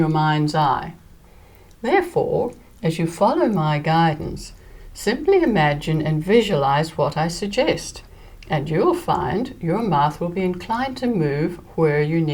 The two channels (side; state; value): both; identical; correlation 1.00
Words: mind's eye. Therefore, as you follow my guidance, simply imagine and visualize what I suggest, and you'll find your mouth will be inclined to move where you